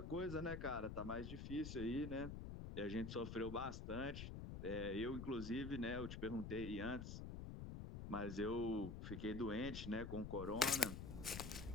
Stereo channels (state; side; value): noise; left; rumble, 6 dB below the sound